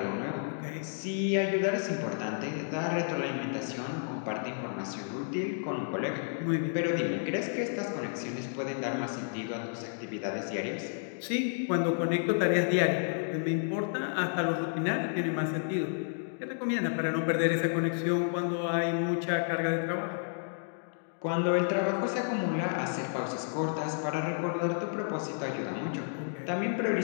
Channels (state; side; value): silent; right; digital silence